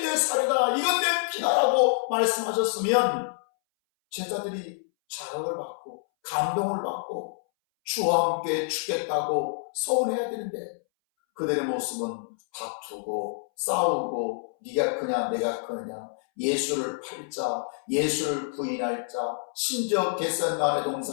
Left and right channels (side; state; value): right; silent; 60 dB below the other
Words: 내 살이다, 이건 내 피다라고 말씀하셨으면 제자들이 자극을 받고 감동을 받고 주와 함께 죽겠다고 서운해야 되는데 그들의 모습은 다투고 싸우고 네가 크냐 내가 크느냐, 예수를 팔자, 예수를 부인할 자, 심지어 겟세마네